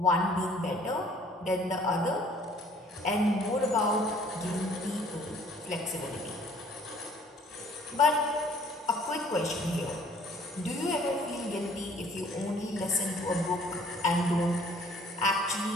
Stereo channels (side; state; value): both; normal; correlation 0.57